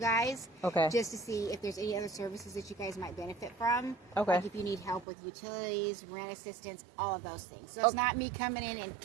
just to see if there's any other services that you guys might benefit from. Like if you need help with utilities, rent assistance, all of those things. So it's not me coming in and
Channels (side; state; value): left; drops out; at 5.1 s